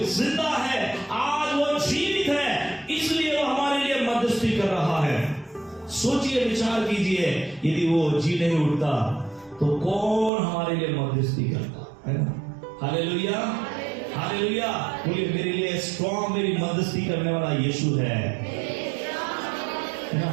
जिंदा है, आज वो जीवित है, इसलिए वो हमारे लिए मध्यस्थी कर रहा है। सोचिए, विचार कीजिए, यदि वो जी नहीं उठता तो कौन हमारे लिए मध्यस्थी करता, है ना। Hallelujah, hallelujah. बोलिए, मेरे लिए स्ट्रॉन्ग, मेरी मध्यस्थी करने वाला यीशु है ना।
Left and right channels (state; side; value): drops out; left; at 10.3 s